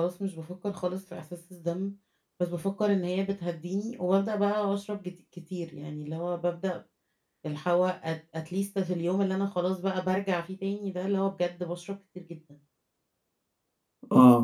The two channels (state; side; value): identical; both; correlation 1.00